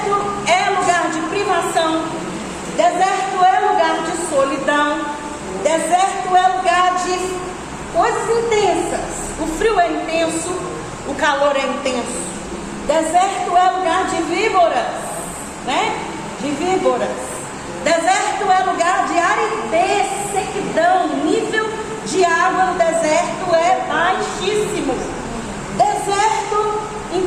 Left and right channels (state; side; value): identical; both; correlation 1.00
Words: é lugar de privação, deserto é lugar de solidão, deserto é lugar de coisas intensas. O frio é intenso, o calor é intenso. Deserto é lugar de víboras, né? De víboras. Deserto é lugar de aridez, sequidão, nível de água no deserto é baixíssimo. Deserto,